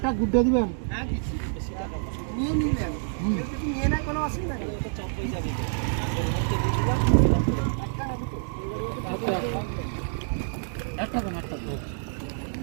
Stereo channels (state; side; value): silent; left; digital silence